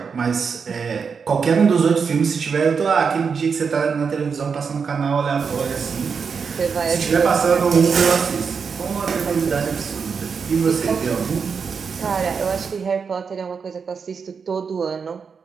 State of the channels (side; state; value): left; quieter; 5.8 dB